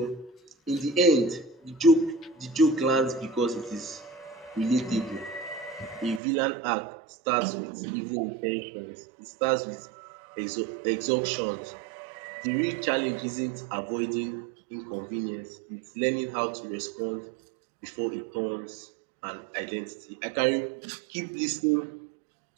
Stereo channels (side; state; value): left; drops out; at 6.2 s